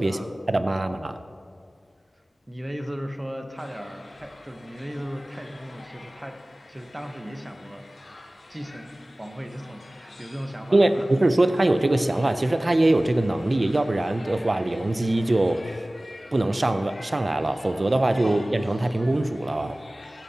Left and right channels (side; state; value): both; normal; correlation 0.98